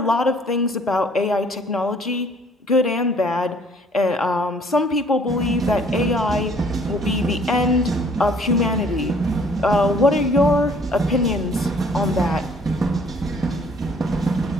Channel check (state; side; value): normal; both; correlation 0.59